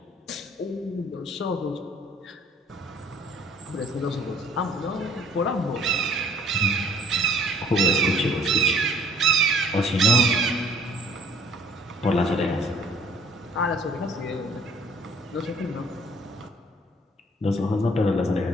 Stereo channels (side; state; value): both; normal; correlation 0.56